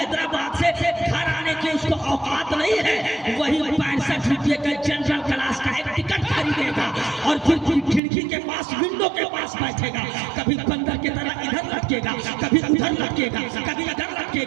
से घर आने की उसको औकात नहीं है, वही 65 रुपये का जनरल क्लास का एक टिकट खरीदेगा और फिर खिड़की के पास, विंडो के पास बैठेगा। कभी बंदर की तरह इधर लटकेगा, कभी उधर लटकेगा, कभी इधर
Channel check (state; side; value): drops out; left; at 8.0 s